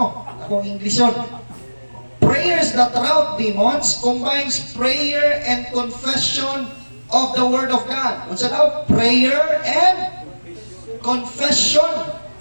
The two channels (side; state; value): both; inverted; correlation -1.00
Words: Akong Englisyon. Prayers that rout demons combines prayer and confession of the Word of God. Unsa daw? Prayer and confession.